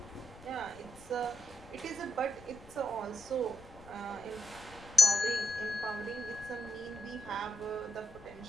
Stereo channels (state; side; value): noise; left; rumble, 19 dB below the sound